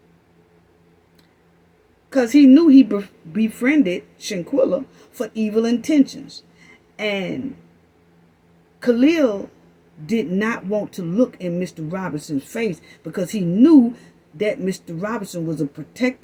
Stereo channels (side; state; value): both; identical; correlation 1.00